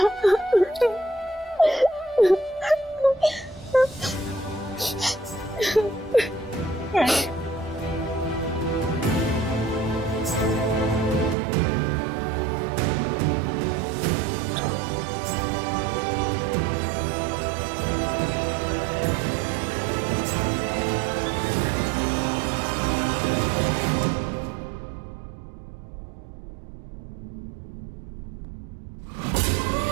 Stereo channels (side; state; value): left; drops out; at 11.4 s